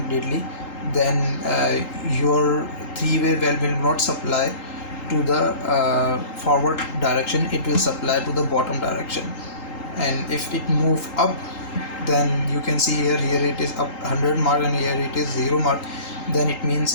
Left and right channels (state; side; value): late; right; 3.8 ms